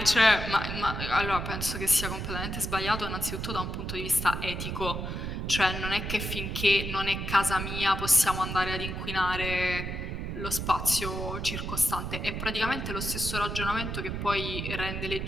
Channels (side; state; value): right; noise; rumble, 4 dB below the sound